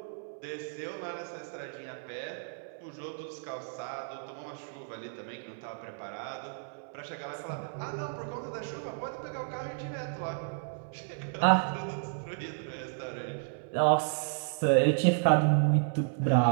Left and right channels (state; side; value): silent; left; 56 dB below the other